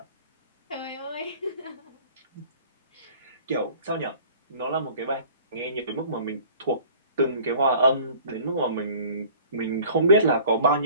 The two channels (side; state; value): both; inverted; correlation -0.49